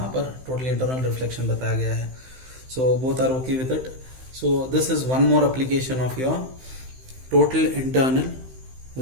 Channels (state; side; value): late; left; 15 ms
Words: पर टोटली इंटरनल रिफ्लेक्शन बताया गया है। So both are okay with it. So this is one more application of your total internal